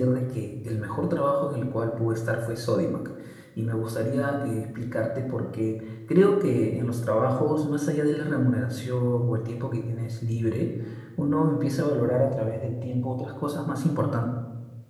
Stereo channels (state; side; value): identical; both; correlation 1.00